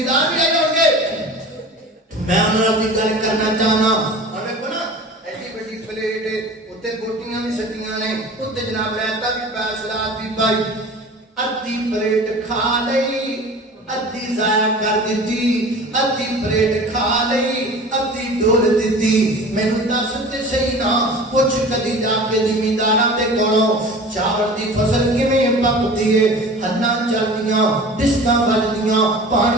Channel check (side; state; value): both; normal; correlation 0.39